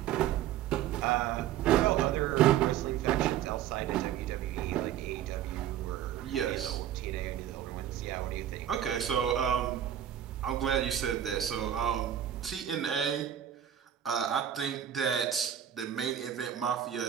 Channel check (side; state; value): left; quieter; 10.5 dB